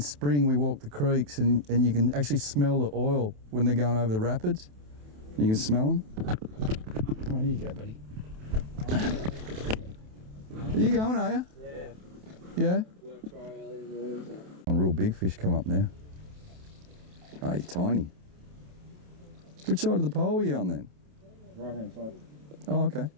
we walk the creeks and you can actually smell the oil when they're going over the rapids. You can smell them. Oh, here you go, buddy. Are you going, are you? Yeah. Yeah? Work tomorrow early in the morning. So. Real big fish come up now. Oh, you're tiny. Which side of the pole are you on then? Right hand side. Oh, okay.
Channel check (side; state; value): left; late; 28 ms